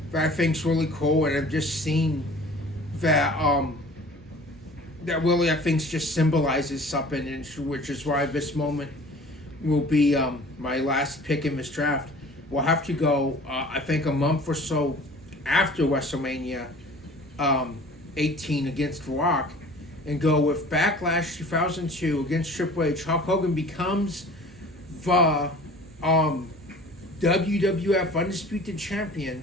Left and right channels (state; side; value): normal; both; correlation 0.46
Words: that I think's really cool, and I've just seen that that really I think just symbolizes something, and which is why this moment will be my last pick in this draft. We'll have to go, I think, a month or so after WrestleMania 18 against The Rock, and go with Backlash 2002 against Triple H. Hulk Hogan becomes the WWF Undisputed Champion